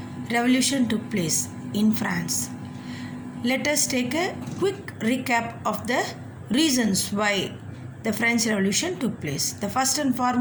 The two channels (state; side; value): identical; both; correlation 1.00